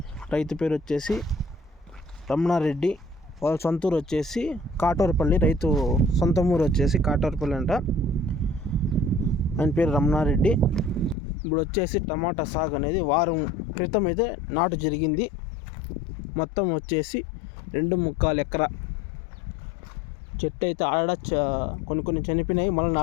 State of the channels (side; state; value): right; drops out; at 11.2 s